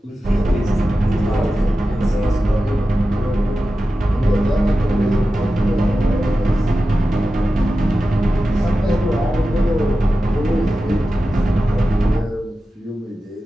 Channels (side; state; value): both; normal; correlation 0.93